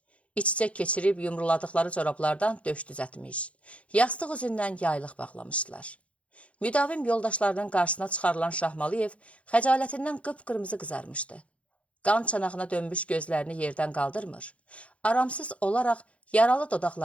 İç-içə keçirib yumruladıqları corablardan döş düzətmiş. Yastıq üzündən yaylıq bağlamışdılar. Müdavim yoldaşlarının qarşısına çıxarılan Şahmaliyev xəcalətindən qıpqırmızı qızarmışdı. Qan çanağına dönmüş gözlərini yerdən qaldırmır. Aramsız olaraq yaralı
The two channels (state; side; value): late; right; 0.063 ms